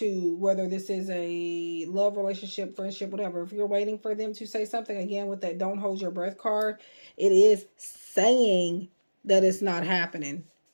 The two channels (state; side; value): inverted; both; correlation -1.00